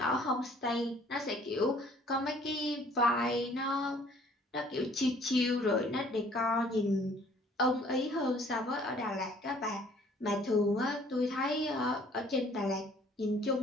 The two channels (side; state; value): both; normal; correlation 0.57